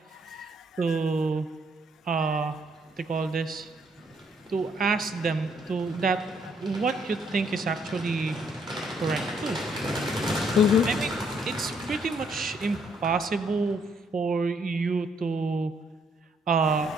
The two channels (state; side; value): normal; both; correlation 0.69